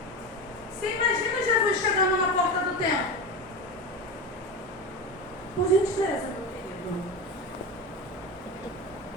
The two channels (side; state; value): both; normal; correlation 0.23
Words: Você imagina Jesus chegando na porta do templo? Por gentileza, meu querido.